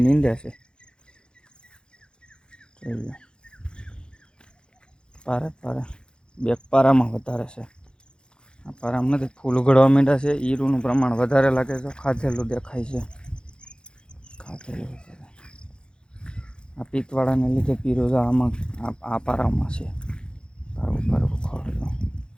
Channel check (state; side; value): late; right; 0.049 ms